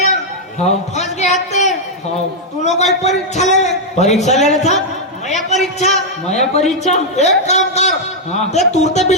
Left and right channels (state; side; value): normal; both; correlation -0.03